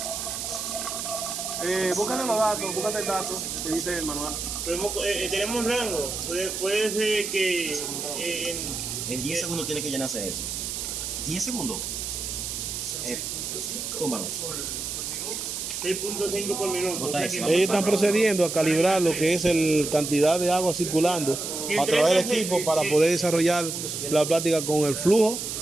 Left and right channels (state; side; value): noise; right; hiss, 4 dB below the sound